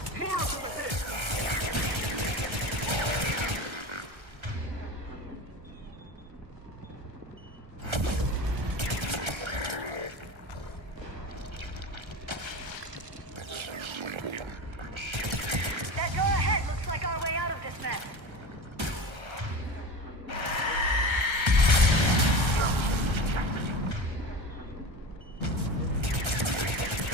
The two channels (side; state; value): left; late; 1.3 ms